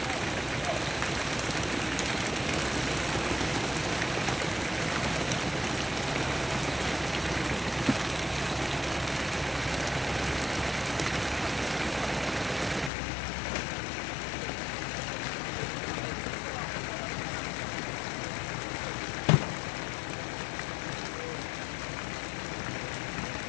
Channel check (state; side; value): drops out; right; at 12.9 s